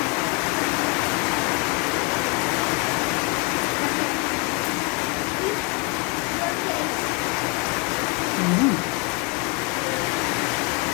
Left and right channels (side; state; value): right; quieter; 28.4 dB